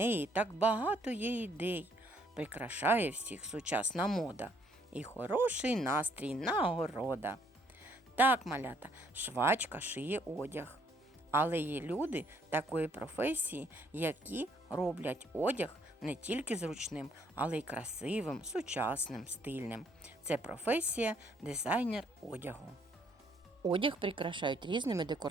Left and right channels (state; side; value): normal; both; correlation 0.66